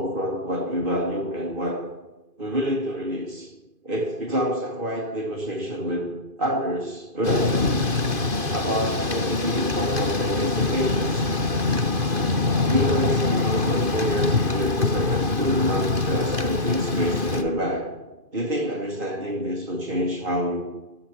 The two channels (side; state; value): left; late; 2.5 ms